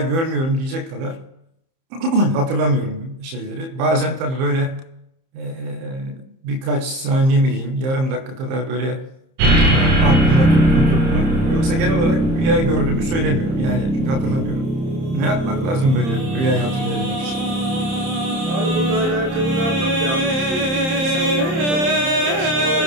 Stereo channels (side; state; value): left; late; 30 ms